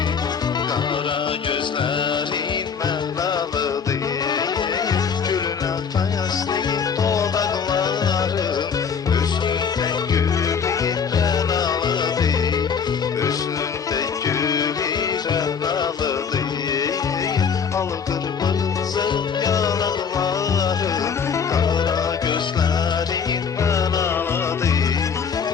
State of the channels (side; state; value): right; quieter; 6.5 dB